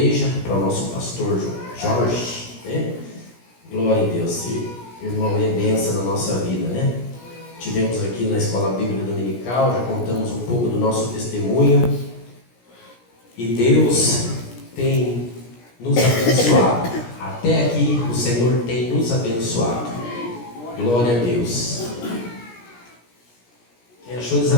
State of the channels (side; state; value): right; late; 17 ms